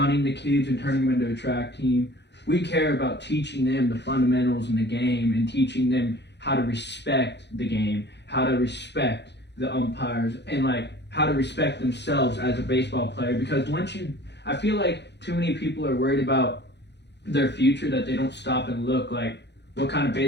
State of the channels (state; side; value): late; right; 0.50 ms